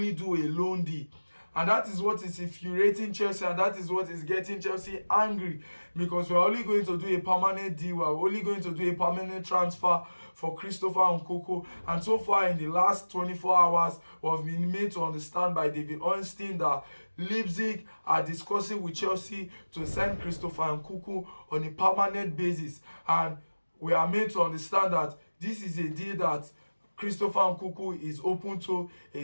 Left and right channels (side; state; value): both; inverted; correlation -1.00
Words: do a loan deal. And that is what is infuriating Chelsea, and that is what is getting Chelsea angry, because we're only going to do a permanent deal, we're only going to do a permanent transfer for Christopher Nkunku. And so far in the last 24 hours, we've been made to understand by David Ornstein that Leipzig are discussing with Chelsea to sign Christopher Nkunku on a permanent basis. And we are made to understand that this is a deal that Christopher Nkunku is open to.